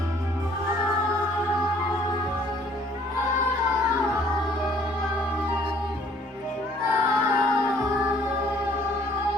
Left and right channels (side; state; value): both; normal; correlation 0.59